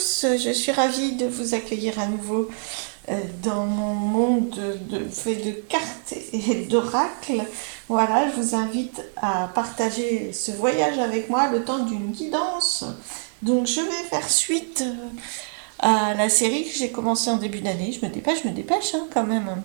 Je suis ravie de vous accueillir à nouveau dans mon monde fait de cartes et d'oracles. Voilà, je vous invite à partager ce voyage avec moi le temps d'une guidance. Donc, je vais faire suite à la série que j'ai commencée en début d'année. Je me dépêche hein, quand même un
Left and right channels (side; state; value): left; silent; 62 dB below the other